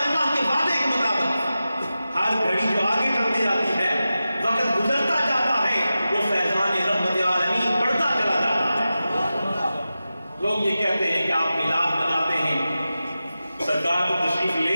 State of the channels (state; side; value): inverted; both; correlation -0.93